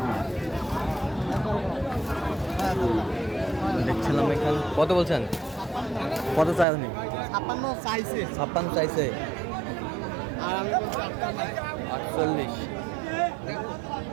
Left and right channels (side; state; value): left; drops out; at 6.7 s